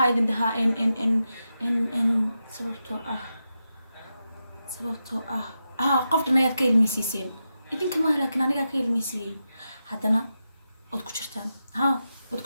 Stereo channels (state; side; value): inverted; both; correlation -0.88